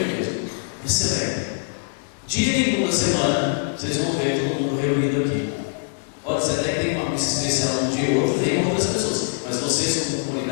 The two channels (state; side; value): silent; right; digital silence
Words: mesmo. Excelente. Dia nenhum da semana, vocês vão ver todo mundo reunido aqui. Pode ser até que tem uma missa especial um dia ou outro, vem outras pessoas, mas vocês, como